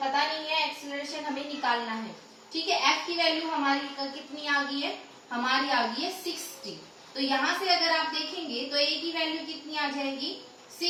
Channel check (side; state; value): both; identical; correlation 1.00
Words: नहीं है, एक्सेलरेशन हमें निकालना है। ठीक है, f की वैल्यू हमारी कितनी आ गई है? हमारी आ गई है 60। तो यहां से अगर आप देखेंगे तो a की वैल्यू कितनी आ जाएगी?